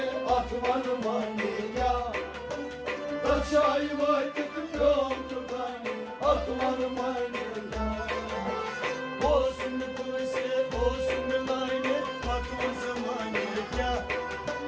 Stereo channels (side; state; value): both; identical; correlation 1.00